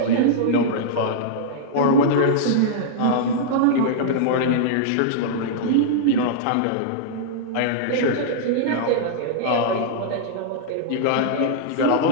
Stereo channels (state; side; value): different; both; correlation -0.02